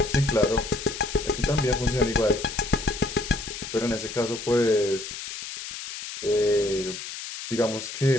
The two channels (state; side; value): noise; left; hiss, 9 dB below the sound